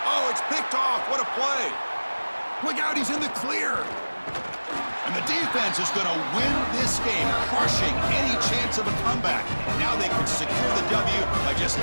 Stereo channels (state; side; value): inverted; both; correlation -1.00